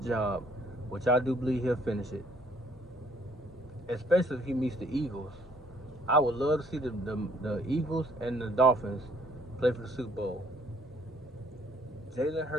the job, which I do believe he'll finish it. Especially if he meets the Eagles. I would love to see the Eagles and the Dolphins play for the Super Bowl. Jalen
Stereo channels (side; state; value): both; normal; correlation 0.63